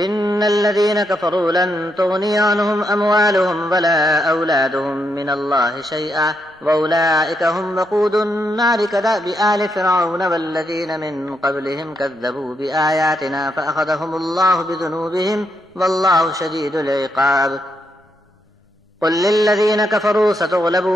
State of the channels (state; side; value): normal; both; correlation 0.80